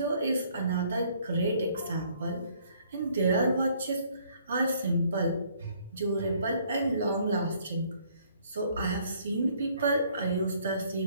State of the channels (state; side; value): inverted; both; correlation -0.63